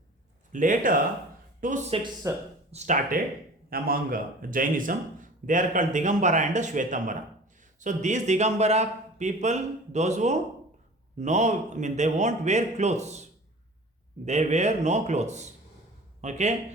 Later, two sects started among Jainism. They are called Digambara and Shvetambara. So these Digambara people, those who they won't wear clothes. They wear no clothes.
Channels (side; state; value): both; normal; correlation 0.42